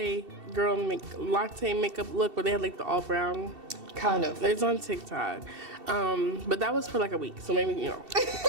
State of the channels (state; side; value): late; left; 2.7 ms